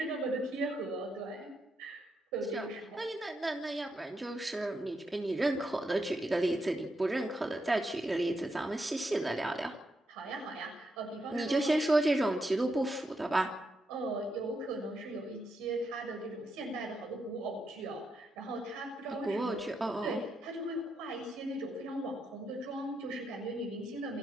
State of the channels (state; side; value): normal; both; correlation 0.82